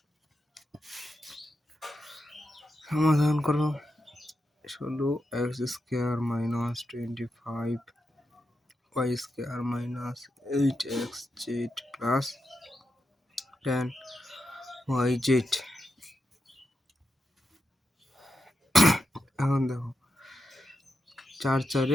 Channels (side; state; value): both; normal; correlation 0.87